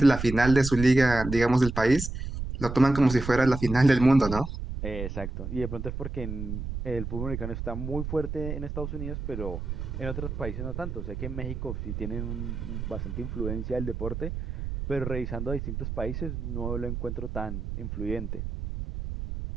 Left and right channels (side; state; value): right; noise; rumble, 6 dB below the sound